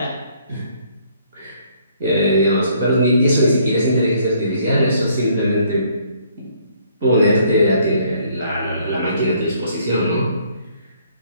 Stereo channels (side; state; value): both; inverted; correlation -0.64